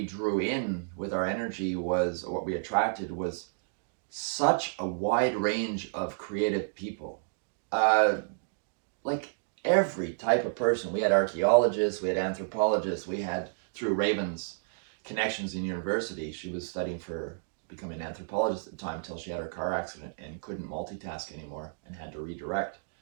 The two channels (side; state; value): left; silent; digital silence